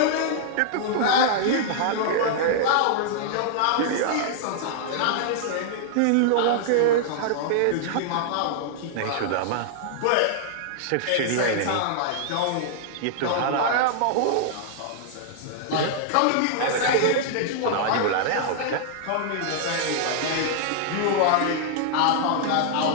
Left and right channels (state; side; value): different; both; correlation -0.01